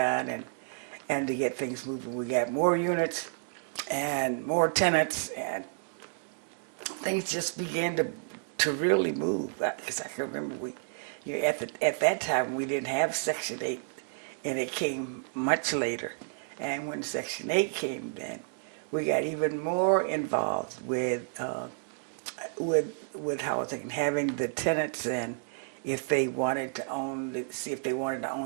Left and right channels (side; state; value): left; silent; digital silence